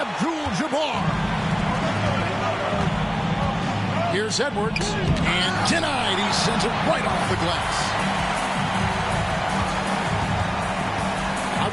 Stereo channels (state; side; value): identical; both; correlation 1.00